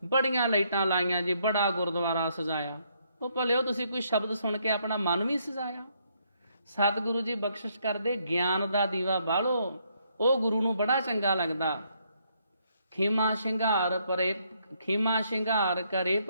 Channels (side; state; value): both; inverted; correlation -0.72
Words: ਬੜੀਆਂ ਲਾਈਟਾਂ ਲਾਈਆਂ ਜੀ, ਬੜਾ ਗੁਰਦੁਆਰਾ ਸਜਾਇਆ। ਉਹ ਭਲਿਓ ਤੁਸੀਂ ਕੋਈ ਸ਼ਬਦ ਸੁਣ ਕੇ ਆਪਣਾ ਮਨ ਵੀ ਸਜਾਇਆ। ਸਤਿਗੁਰੂ ਜੀ ਬਖਸ਼ਿਸ਼ ਕਰਦੇ, ਗਿਆਨ ਦਾ ਦੀਵਾ ਬਾਲੋ, ਉਹ ਗੁਰੂ ਨੂੰ ਬੜਾ ਚੰਗਾ ਲੱਗਦਾ। ਖੀਮਾ ਸ਼ਿੰਗਾਰ ਕਰੇ